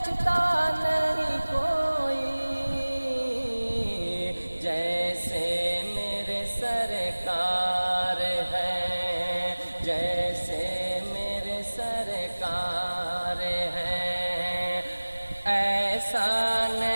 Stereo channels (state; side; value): inverted; both; correlation -1.00